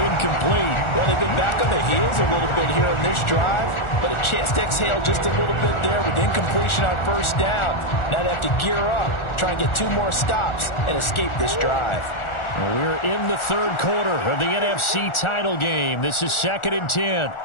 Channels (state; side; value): late; right; 1.4 ms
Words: Well, they've been back on the heels a little bit here in this drive, but a chance to exhale just a little bit there with incompletion on first down. Now they have to gear up, try and get 2 more stops and escape this drive. Well, we're in the third quarter of the NFC title game. This is 2nd and 10.